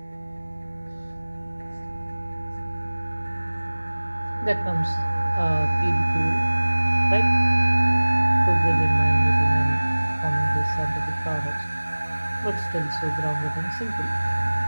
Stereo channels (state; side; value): inverted; both; correlation -1.00